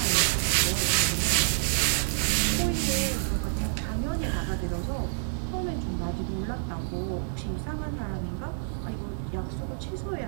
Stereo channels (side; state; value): left; silent; digital silence